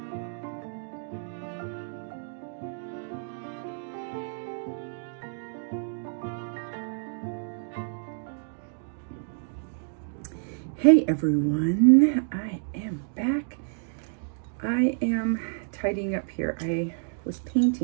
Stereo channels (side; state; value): left; silent; digital silence